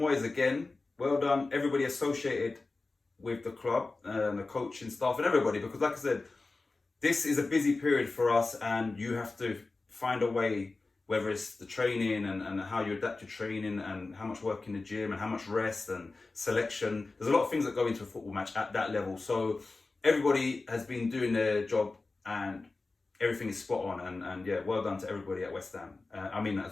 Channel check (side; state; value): right; quieter; 3.6 dB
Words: again, well done everybody associated with the club, and the coaching staff and everybody, because like I said, this is a busy period for us, and you have to find a way, whether it's the training and how you adapt your training and how much work in the gym and how much rest and selection. There's a lot of things that go into a football match at that level. So everybody has been doing their job and everything is spot on. And yeah, well done to everybody at West Ham. I mean that as